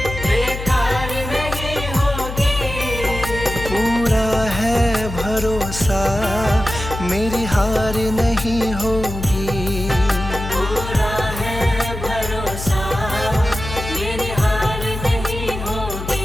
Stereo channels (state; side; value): noise; left; hum, 8 dB below the sound